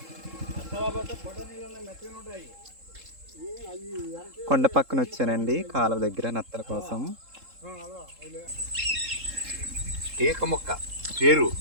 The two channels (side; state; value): left; late; 3.7 ms